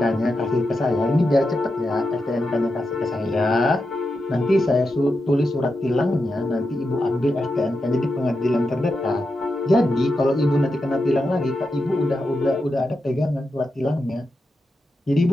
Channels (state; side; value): normal; both; correlation 0.88